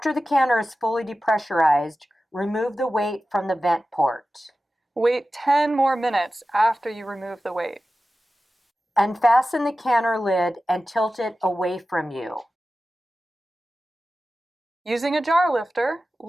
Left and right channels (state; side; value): normal; both; correlation 0.94